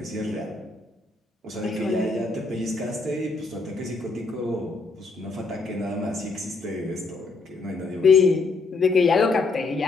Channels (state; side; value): quieter; right; 3.8 dB